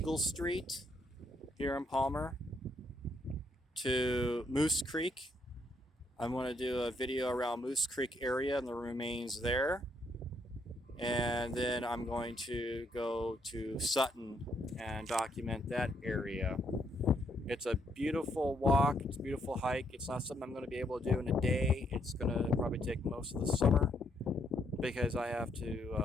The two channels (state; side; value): normal; both; correlation 0.73